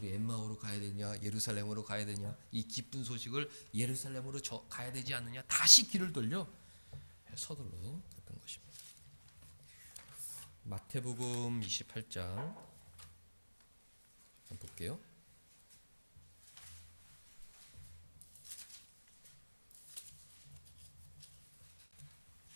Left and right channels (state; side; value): inverted; both; correlation -1.00